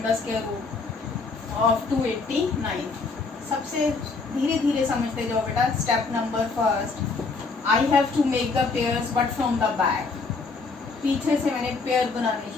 the square root of 289। सबसे धीरे धीरे समझते जाओ बेटा। Step number first, I have to make the pairs but from the back. पीछे से मैंने पेयर बनाने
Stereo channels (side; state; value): right; quieter; 4.2 dB